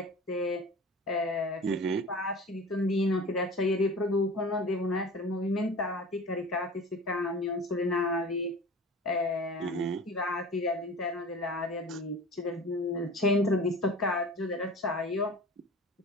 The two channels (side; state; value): both; normal; correlation 0.38